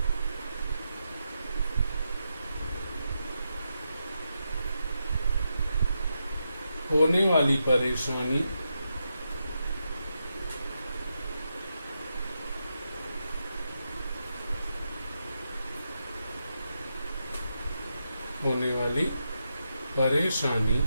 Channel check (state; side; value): inverted; both; correlation -0.85